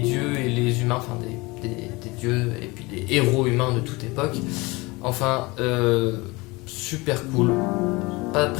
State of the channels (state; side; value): quieter; right; 23.9 dB